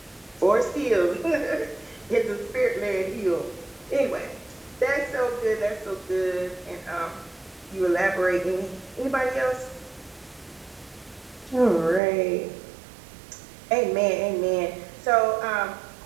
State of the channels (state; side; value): drops out; left; at 12.0 s